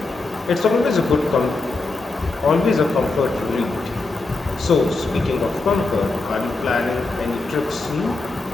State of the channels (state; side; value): quieter; right; 3.5 dB